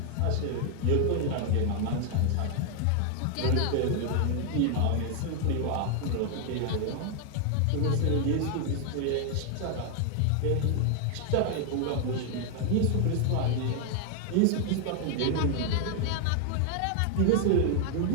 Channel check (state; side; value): different; both; correlation 0.00